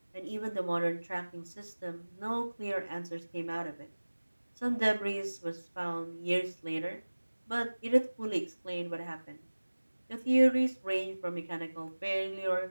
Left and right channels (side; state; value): both; inverted; correlation -1.00